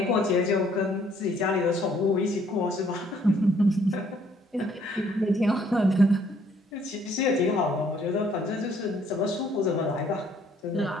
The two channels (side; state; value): both; normal; correlation 0.64